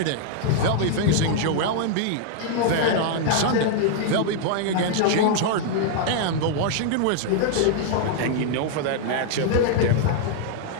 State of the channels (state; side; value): different; both; correlation -0.01